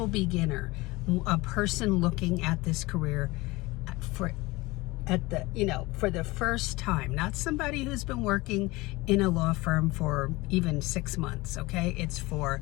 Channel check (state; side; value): quieter; right; 21.8 dB